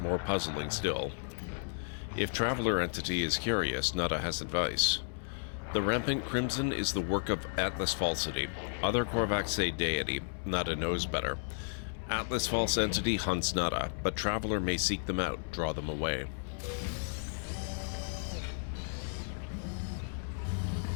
More puzzling still. If Traveler Entity is curious, Nada has advice. The rampant crimson is the work of Atlas Falsity. Other Korvax say deity. Nada knows better. Atlas False Entity hunts Nada, but Traveler may seek them out, draw them away.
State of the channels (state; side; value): silent; right; digital silence